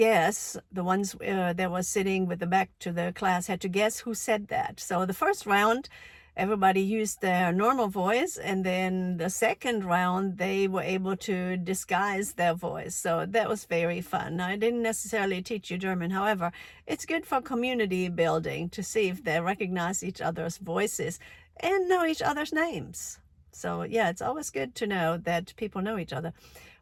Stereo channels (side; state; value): both; identical; correlation 1.00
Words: the ones that was sitting with the back to the class had to guess who said that. So the first round, everybody used their normal voice, and then the second round, they were able to disguise their voice. So that was very fun. Now, I didn't necessarily teach you German. However, it's good for community building to see if they recognize each other's voices and know each other's names. So yeah, it's always good to know that people know each other.